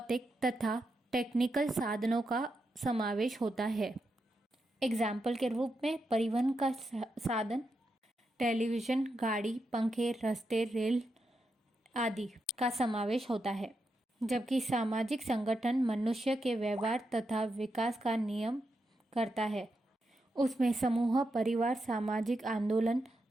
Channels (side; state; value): both; normal; correlation 0.85